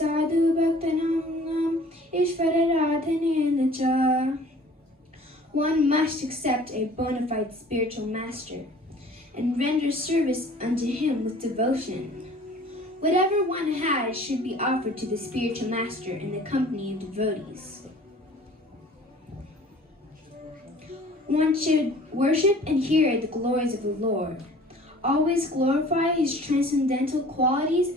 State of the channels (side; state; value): both; normal; correlation 0.49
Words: Bhaktanam Ishvara Radhanena Cha. One must accept a bona fide spiritual master and render service unto him with devotion. Whatever one has should be offered to the spiritual master in the company of devotees. One should worship and hear the glories of the Lord, always glorify his transcendental qualities